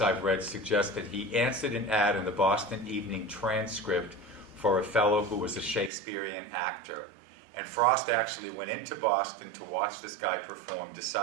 read suggests that he answered an ad in the Boston Evening Transcript for a fellow who was a Shakespearean actor. And Frost actually went into Boston to watch this guy perform,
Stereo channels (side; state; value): left; drops out; at 5.9 s